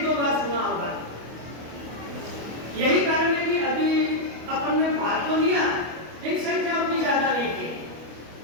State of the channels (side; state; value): left; late; 25 ms